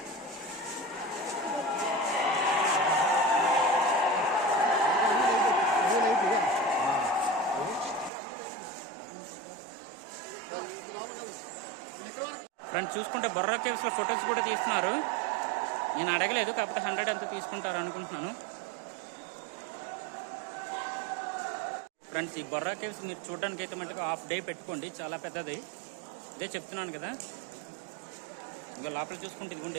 ఫ్రెండ్స్ చూసుకుంటే బొర్రా కేవ్స్లో ఫొటోస్ కూడా తీస్తున్నారు. నేను అడగలేదు, కాకపోతే 100 అంతా తీసుకుంటారు అనుకుంటున్నాను. ఫ్రెండ్స్ ఈ బొర్రా కేవ్స్ మీరు చూడడానికి అయితే మటుకు హాఫ్ డే పెట్టుకోండి, చాలా పెద్దది. ఇదే చెప్తున్నాను కదా. ఇంకా లోపల చూసుకుంటే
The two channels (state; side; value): drops out; left; at 8.1 s